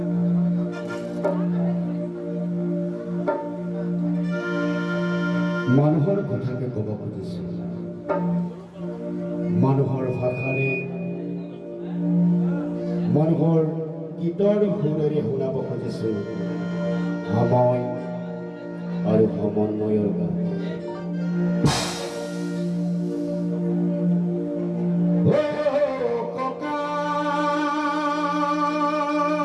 মানুহৰ কথাকে ক'ব খুজিছোঁ। মানুহৰ ভাষাৰে মানুহৰ গীতৰ সুৰেৰে শুনাব খুজিছোঁ সময় আৰু সমন্বয়ৰ গান।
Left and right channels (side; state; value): both; identical; correlation 1.00